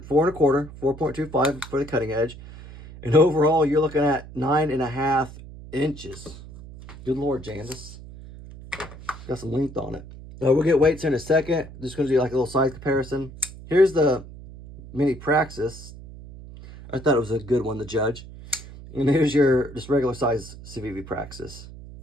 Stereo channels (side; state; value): right; noise; hum, 16 dB below the sound